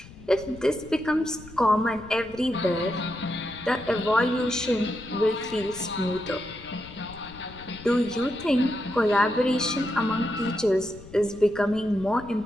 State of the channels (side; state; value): left; noise; rumble, 18 dB below the sound